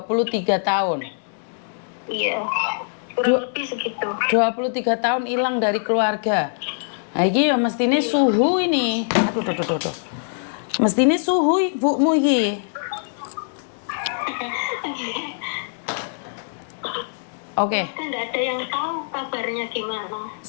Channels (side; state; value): right; silent; digital silence